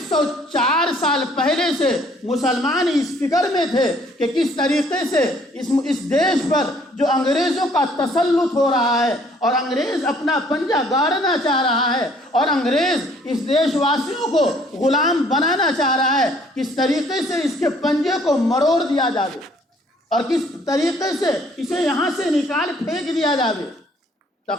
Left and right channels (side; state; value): both; normal; correlation 0.60